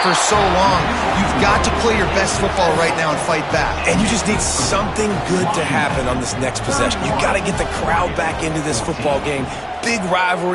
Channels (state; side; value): identical; both; correlation 1.00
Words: for so long. You've got to play your best football right now and fight back. And you just need something good to happen on this next possession. You got to get the crowd back into this football game. Big